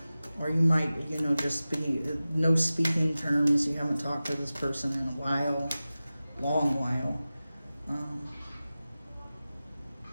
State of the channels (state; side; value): inverted; both; correlation -0.96